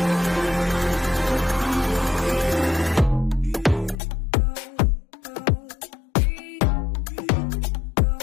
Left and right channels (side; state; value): right; drops out; at 4.0 s